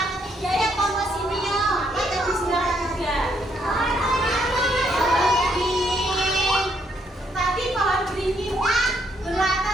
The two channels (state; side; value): normal; both; correlation 0.73